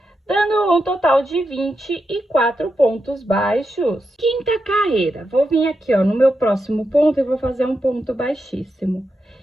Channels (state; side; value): normal; both; correlation 0.86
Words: dando um total de 24 pontos baixos. Quinta carreira, vou vir aqui, ó, no meu próximo ponto e vou fazer um ponto baixíssimo.